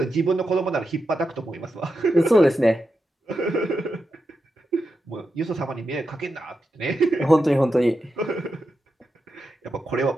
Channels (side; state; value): both; normal; correlation 0.88